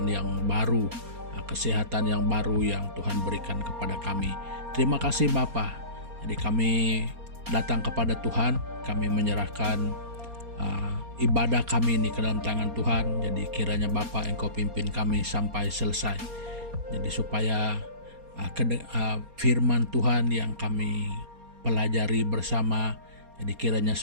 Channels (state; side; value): late; left; 4.3 ms